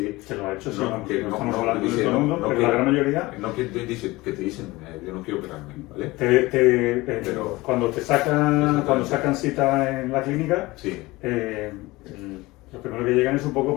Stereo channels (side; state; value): right; quieter; 20.7 dB